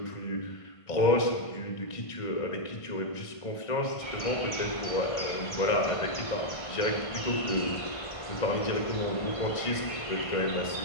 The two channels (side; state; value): right; late; 1.5 ms